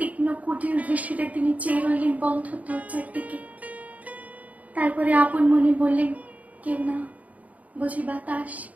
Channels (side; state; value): left; late; 0.072 ms